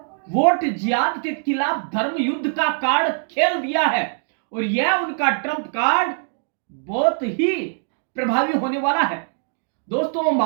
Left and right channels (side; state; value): left; silent; digital silence